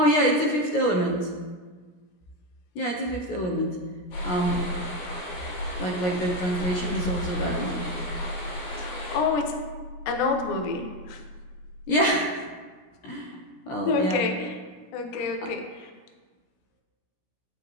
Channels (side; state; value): right; late; 17 ms